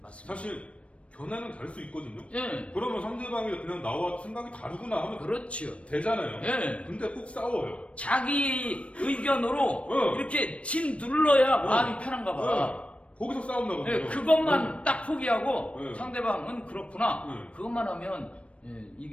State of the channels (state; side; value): late; right; 0.062 ms